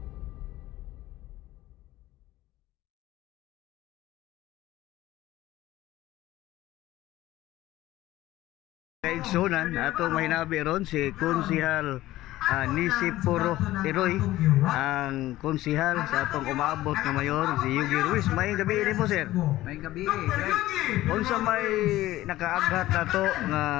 Kaigsunan ato mahinabi ron si Konsihal Nisi Puro Tiroy, ang konsihal sa atong umaabot na mayor si Yugi Ruiz. May gabi ni mo, sir. May gabi, right? Unsa may nakaaghat nato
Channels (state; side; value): quieter; right; 16.0 dB